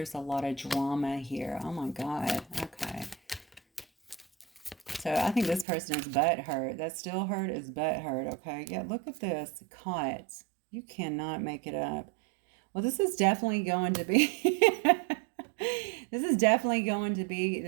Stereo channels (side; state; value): left; drops out; at 5.7 s